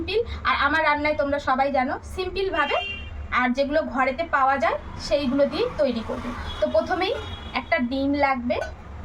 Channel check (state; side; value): identical; both; correlation 1.00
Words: আর আমার রান্নায় তোমরা সবাই জানো সিম্পলভাবে, আর যেগুলো ঘরেতে পাওয়া যায় সেইগুলো দিয়েই তৈরি করবে। তো প্রথমেই একটা ডিম লাগবে,